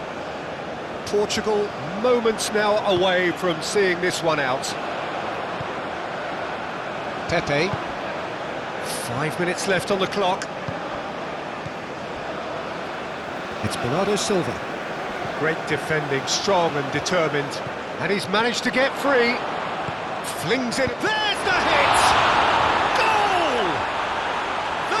Portugal moments now away from seeing this one out. Pepe. 5 minutes left on the clock. It's Bernardo Silva. Great defending, strong and determined. And he's managed to get free. Flings it. There's the hit! Goal!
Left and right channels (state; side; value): identical; both; correlation 1.00